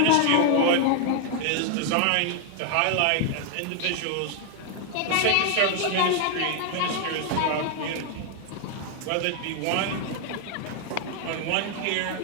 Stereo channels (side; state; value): both; different; correlation 0.00